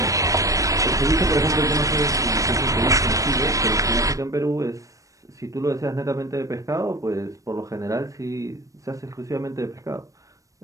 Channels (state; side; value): late; left; 0.16 ms